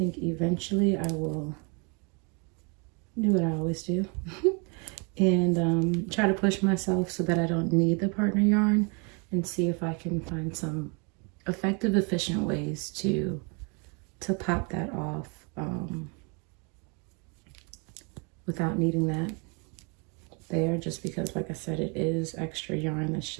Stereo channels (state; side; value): quieter; left; 33.8 dB